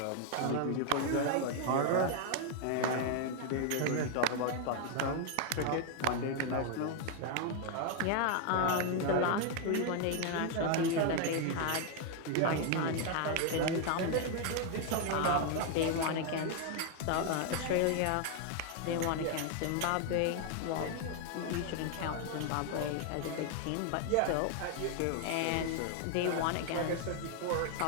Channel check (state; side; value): different; both; correlation 0.00